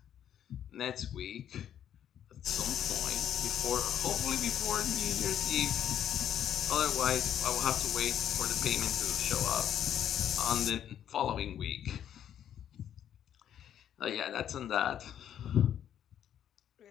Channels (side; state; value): right; quieter; 10.0 dB